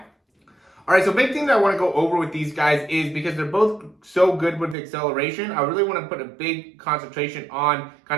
All right, so big thing that I want to go over with these guys is because they're both so good with acceleration, I really want to put a big concentration on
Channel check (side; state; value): left; drops out; at 4.8 s